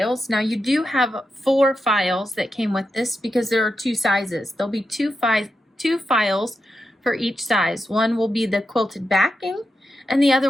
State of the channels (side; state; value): both; normal; correlation 0.87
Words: Now you do have 4 files that came with this because there are 2 sizes. There'll be two files for each size. One will be the quilted backing and the other